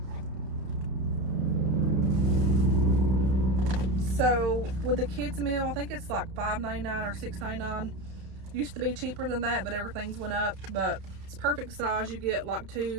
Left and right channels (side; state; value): left; late; 31 ms